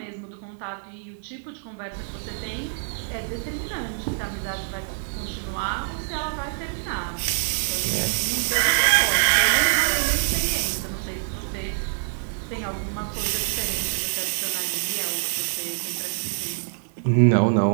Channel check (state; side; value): silent; left; digital silence